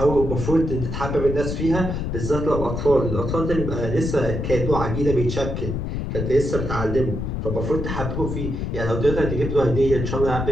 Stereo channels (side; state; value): left; noise; rumble, 3 dB below the sound